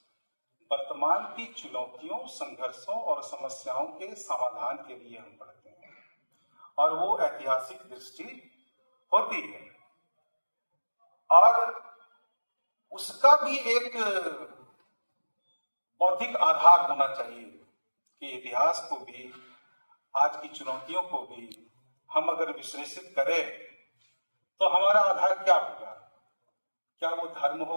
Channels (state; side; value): inverted; both; correlation -1.00